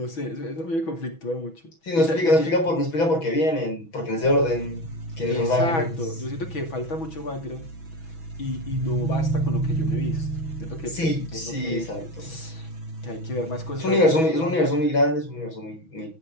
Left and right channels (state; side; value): late; right; 6.1 ms